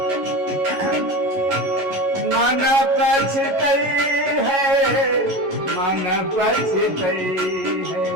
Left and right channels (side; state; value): left; late; 11 ms